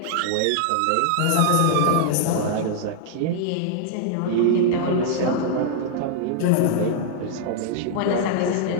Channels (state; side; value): different; both; correlation -0.01